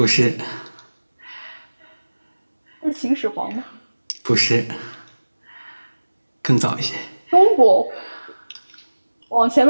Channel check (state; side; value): inverted; both; correlation -1.00